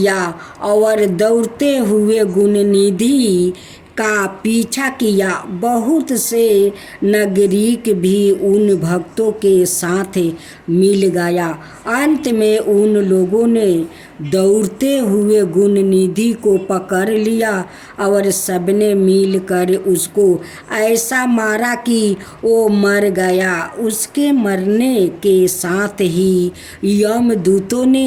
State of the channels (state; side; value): identical; both; correlation 1.00